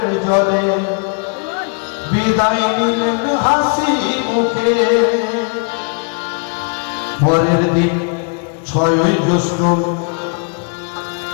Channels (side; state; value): right; quieter; 39.6 dB